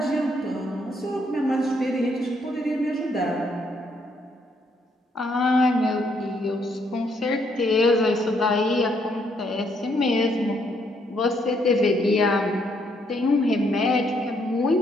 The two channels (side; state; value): both; normal; correlation 0.72